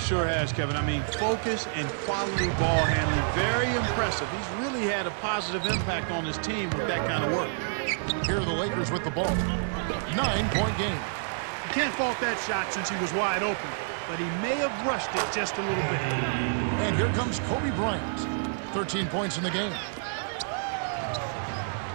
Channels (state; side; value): silent; left; digital silence